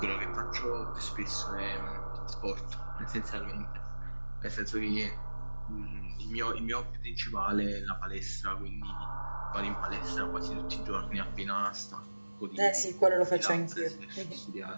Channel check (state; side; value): inverted; both; correlation -1.00